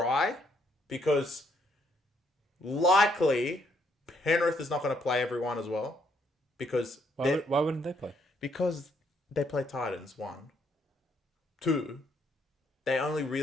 because likely Penrith is not going to play everyone as well. Because why wouldn't they play? Because they play Titans, 1. 2, they only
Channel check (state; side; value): normal; both; correlation 0.71